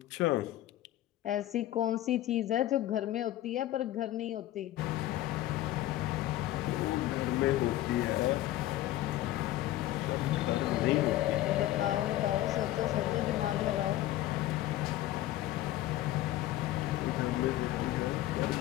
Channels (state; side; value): quieter; right; 14.7 dB